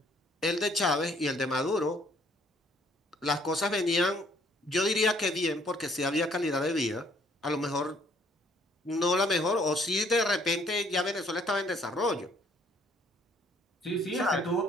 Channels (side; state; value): both; normal; correlation 0.63